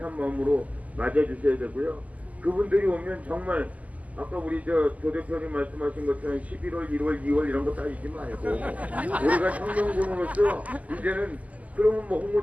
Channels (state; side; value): late; left; 0.074 ms